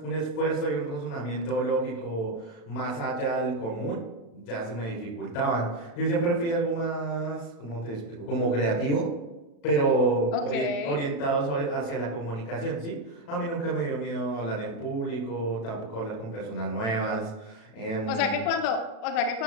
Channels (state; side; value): late; right; 36 ms